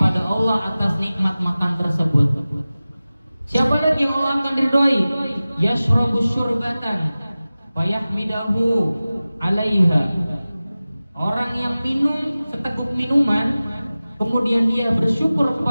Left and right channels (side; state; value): both; inverted; correlation -0.97